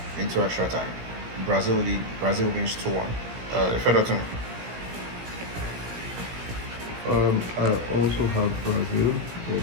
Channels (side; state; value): left; late; 17 ms